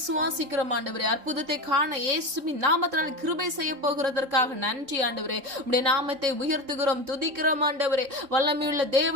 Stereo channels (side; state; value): left; late; 3.8 ms